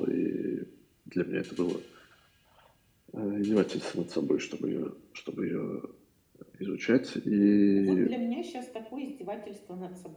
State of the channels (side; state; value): both; identical; correlation 1.00